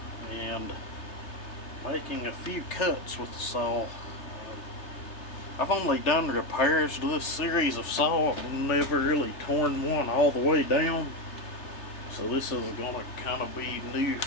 and making a few cuts with the saw. I've only done repairs to this series of saw. I've never really torn one all the way down. So this is going to kind of be new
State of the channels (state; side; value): late; right; 3.4 ms